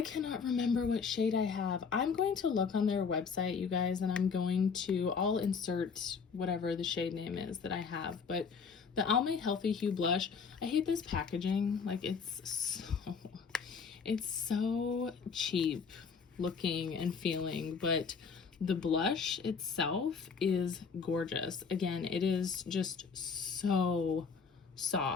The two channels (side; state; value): right; quieter; 5.7 dB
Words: cannot remember what shade I have. I'm going to look on their website, you guys, and I'll insert whatever the shade name is that I have, but the Almay Healthy Hue Blush, I hate this packaging. Like it's so cheap looking and feeling, but the blush itself is gorgeous. Again, it is just so